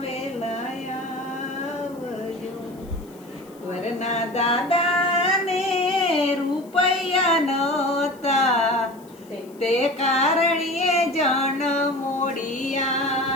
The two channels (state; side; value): noise; left; hiss, 27 dB below the sound